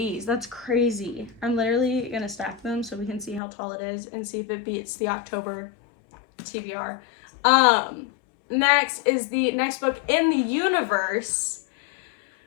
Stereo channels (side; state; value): right; drops out; at 3.4 s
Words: that's crazy. I'm literally gonna stack them so we can see how tall it is and see if it beats the October TBR. Next is the next book in the universe